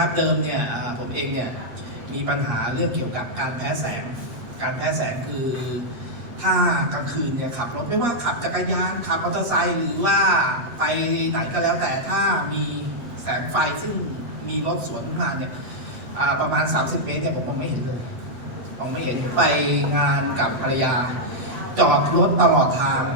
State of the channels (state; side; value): late; left; 8.2 ms